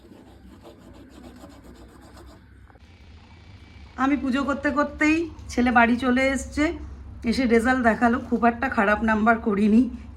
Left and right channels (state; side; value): identical; both; correlation 1.00